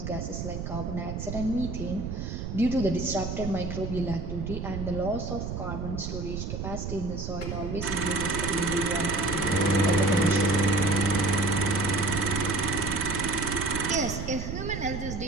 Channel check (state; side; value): noise; right; rumble, 5 dB below the sound